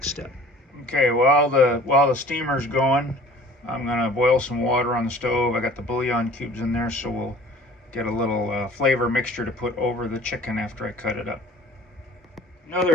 step. Okay, while the steamer's going, I'm going to boil some water on the stove. I got the bouillon cubes in there, so we'll get a little flavor mixture to put over the chicken after I cut it up.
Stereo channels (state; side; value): normal; both; correlation 0.48